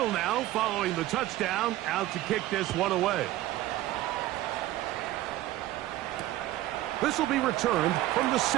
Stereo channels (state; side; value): quieter; left; 15.5 dB